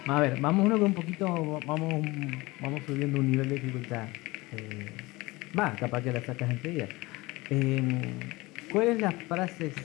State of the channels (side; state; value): right; quieter; 22.0 dB